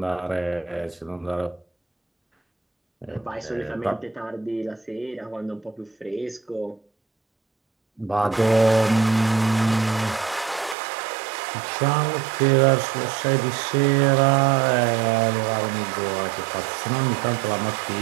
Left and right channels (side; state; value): left; drops out; at 10.8 s